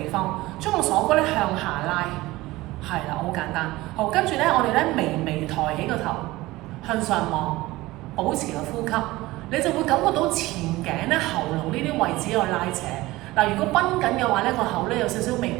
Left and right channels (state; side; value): quieter; left; 19.0 dB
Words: 方，將個鎖骨咧向下拉，係啦，好簡單。好，跟住咧我哋咧微微抬起個頭，向上望，保持個呼吸，你就會感覺到前頸咧喉嚨呢啲位置有拉扯。嗱，如果繃緊嘅話咧，個口咧有少少微